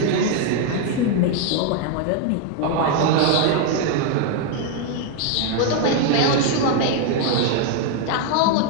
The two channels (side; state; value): both; different; correlation 0.01